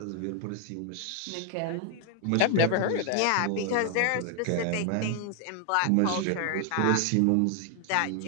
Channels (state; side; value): different; both; correlation 0.00